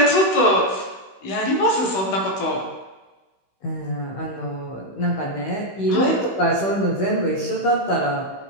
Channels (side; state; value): right; late; 16 ms